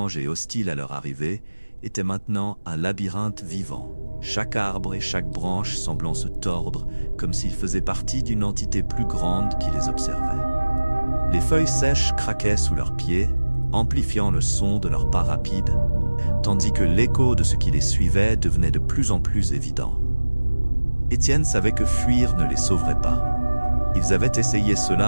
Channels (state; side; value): inverted; both; correlation -1.00